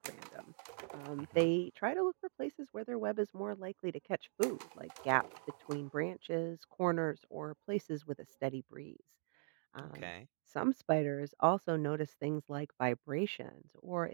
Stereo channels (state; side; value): silent; left; digital silence